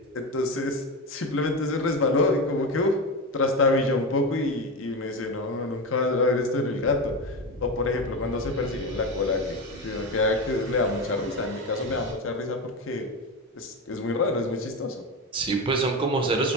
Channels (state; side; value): normal; both; correlation 0.19